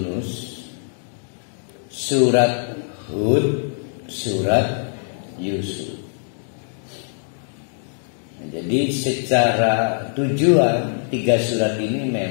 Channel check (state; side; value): silent; right; digital silence